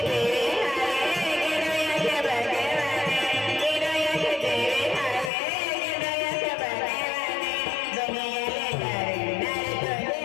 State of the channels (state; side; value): drops out; right; at 5.3 s